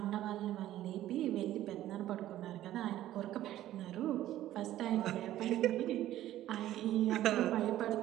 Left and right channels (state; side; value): quieter; left; 13.5 dB